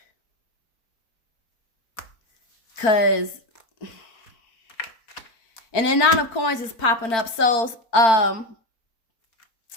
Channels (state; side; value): late; right; 4.5 ms